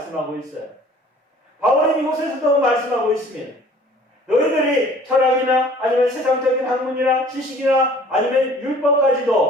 있어요. 바울은 이곳에서도 말씀하고 있습니다. 너희들이 철학이나 아니면 세상적인 학문이나 지식이나 아니면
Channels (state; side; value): normal; both; correlation 0.51